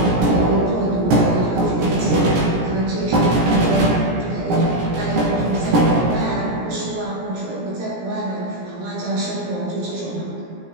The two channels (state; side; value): late; left; 17 ms